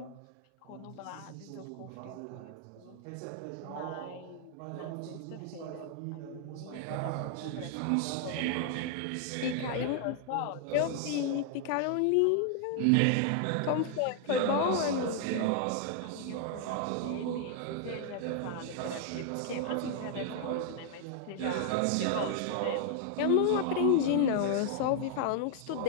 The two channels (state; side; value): different; both; correlation 0.00